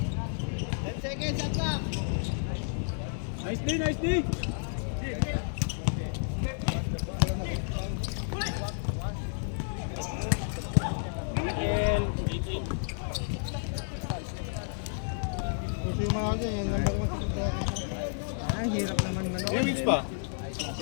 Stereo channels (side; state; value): right; silent; digital silence